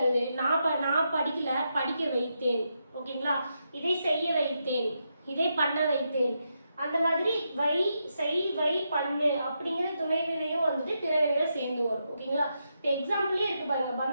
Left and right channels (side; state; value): both; inverted; correlation -0.83